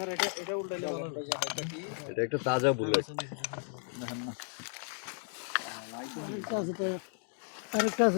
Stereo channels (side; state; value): right; silent; 55 dB below the other